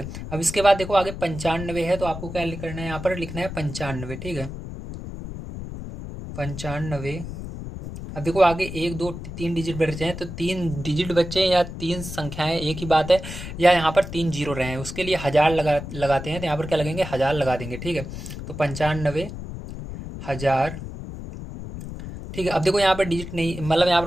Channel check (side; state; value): left; noise; rumble, 9 dB below the sound